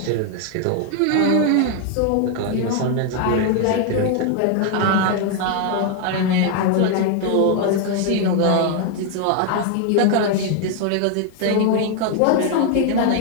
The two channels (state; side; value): different; both; correlation 0.00